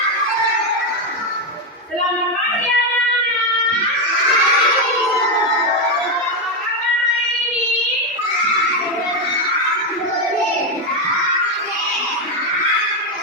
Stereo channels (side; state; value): both; normal; correlation 0.07